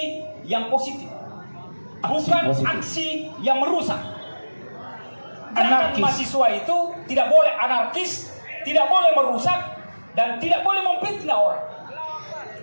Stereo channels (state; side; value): inverted; both; correlation -1.00